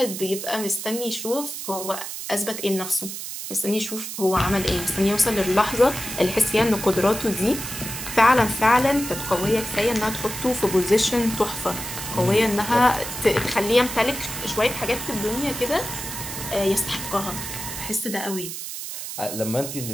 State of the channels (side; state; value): right; noise; hiss, 7 dB below the sound